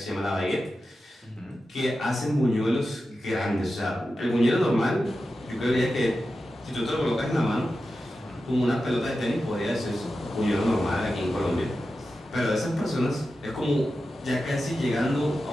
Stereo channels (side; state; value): both; normal; correlation 0.92